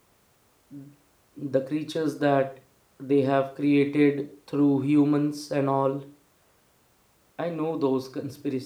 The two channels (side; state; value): both; identical; correlation 1.00